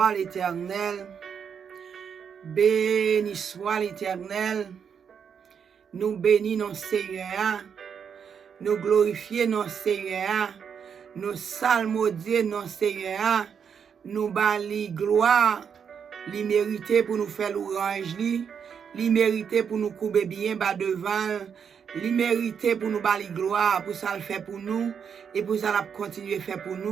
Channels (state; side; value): quieter; left; 7.2 dB